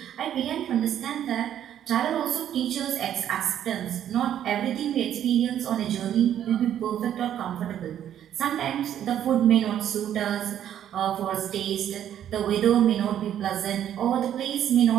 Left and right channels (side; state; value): left; quieter; 10.5 dB